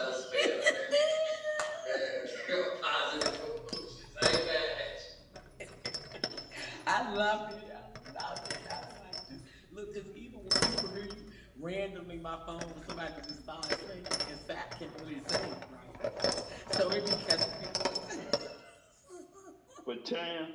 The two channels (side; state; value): both; identical; correlation 1.00